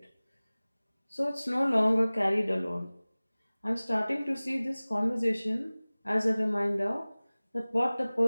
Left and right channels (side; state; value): both; inverted; correlation -0.99